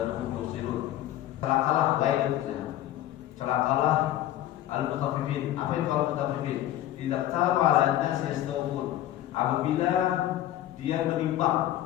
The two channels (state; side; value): quieter; right; 13.4 dB